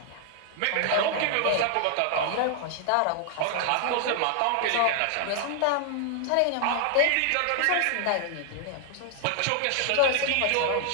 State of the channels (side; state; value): both; different; correlation 0.00